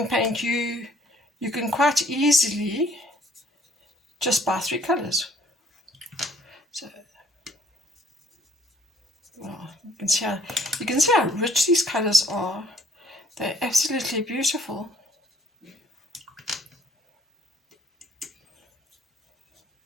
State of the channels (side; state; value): both; normal; correlation 0.61